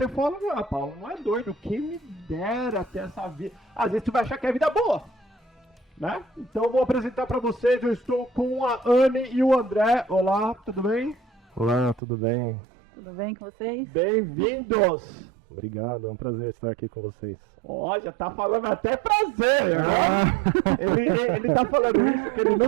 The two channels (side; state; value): left; drops out; at 12.0 s